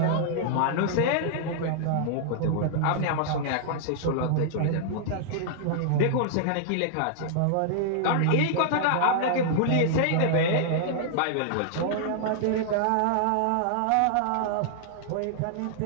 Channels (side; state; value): both; different; correlation -0.01